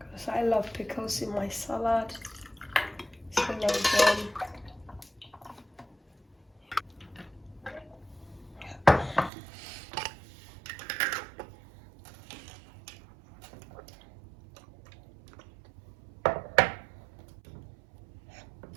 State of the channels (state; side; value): drops out; left; at 9.3 s